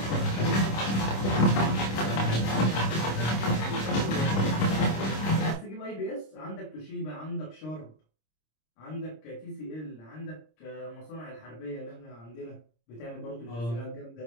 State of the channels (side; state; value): right; late; 26 ms